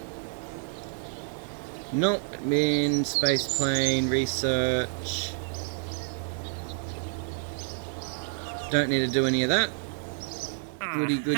Nope, admin, space plane, research. Don't need to do any of that. Goody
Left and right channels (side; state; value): left; silent; digital silence